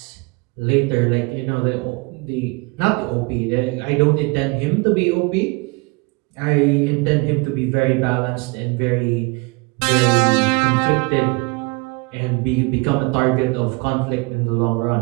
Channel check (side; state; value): left; quieter; 27.6 dB